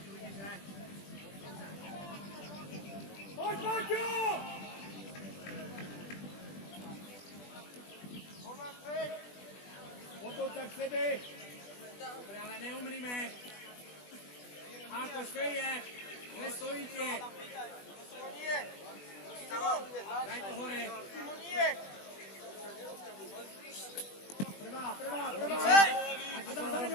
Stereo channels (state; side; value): late; right; 20 ms